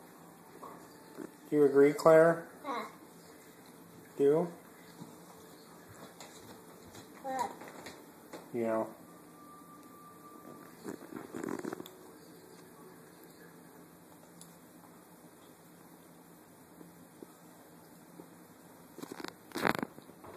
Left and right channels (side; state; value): both; identical; correlation 1.00